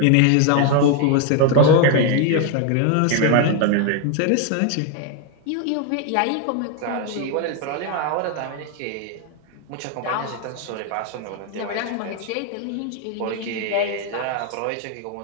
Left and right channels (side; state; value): both; different; correlation 0.01